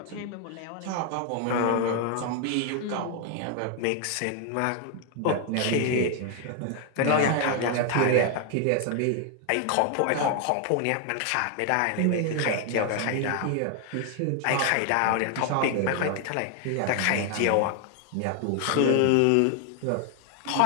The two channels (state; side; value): different; both; correlation 0.00